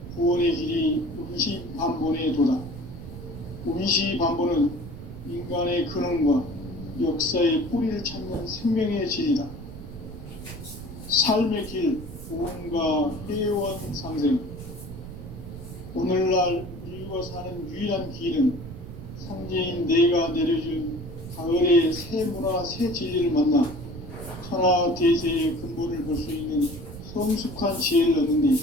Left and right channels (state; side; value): noise; right; rumble, 12 dB below the sound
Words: 구원의 길이 운시반본의 도다. 운시반본은 인간의 근원과 역사의 뿌리를 찾는 생명의 질이다. 삶의 길, 구원과 회원 상생. 오늘날 인류가 사는 유일한 길은 상제인 내가 내려준 가을의 새 문화, 새 진리를 만나 천하 대세의 근본을 볼 수 있는 성숙한 지혜를 얻는 데